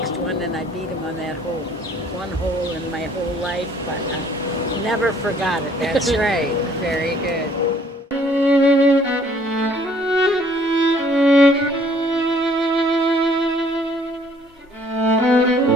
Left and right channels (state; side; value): normal; both; correlation 0.60